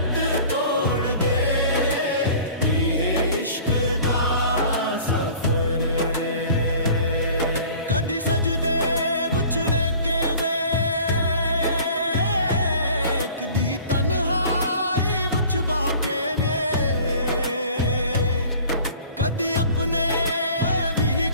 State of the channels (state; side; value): inverted; both; correlation -0.47